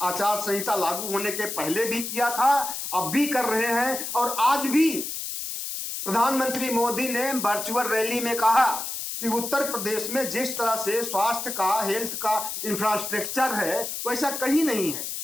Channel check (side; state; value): left; noise; hiss, 5 dB below the sound